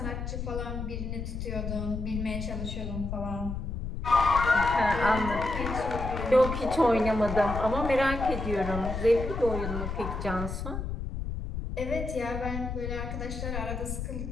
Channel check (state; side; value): noise; left; rumble, 5 dB below the sound